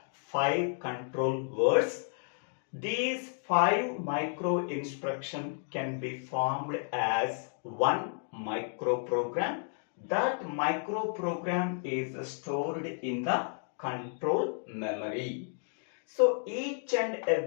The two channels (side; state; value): right; silent; 56 dB below the other